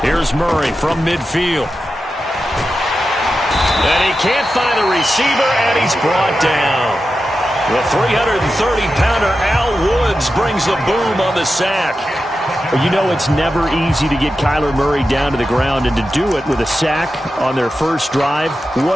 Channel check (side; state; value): both; normal; correlation 0.91